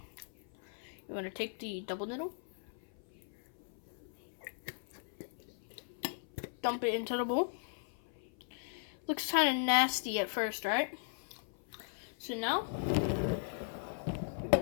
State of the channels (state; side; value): silent; right; 53 dB below the other